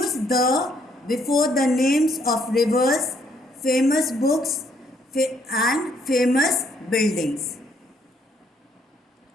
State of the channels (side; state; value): both; normal; correlation 0.69